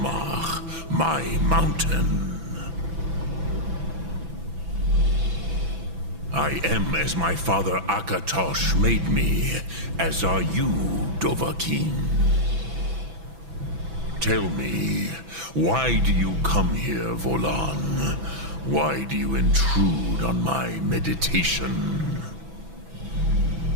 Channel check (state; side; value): late; left; 6.0 ms